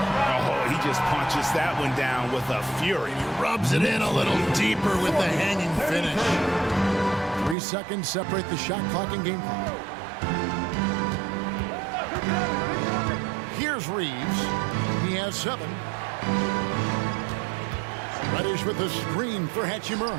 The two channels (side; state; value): left; drops out; at 7.6 s